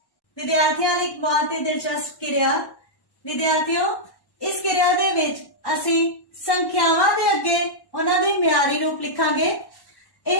विद्यार्थियों लई एक बहुत ही दिलचस्प क्रिया। विद्यार्थियों इस क्रिया दे विच असी संख्यावां दे अगे उन्हां दे म्यारी रूप लिखांगे।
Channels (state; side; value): late; right; 1.1 ms